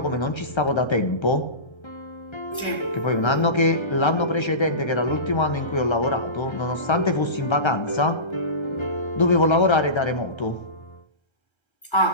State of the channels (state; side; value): late; right; 1.3 ms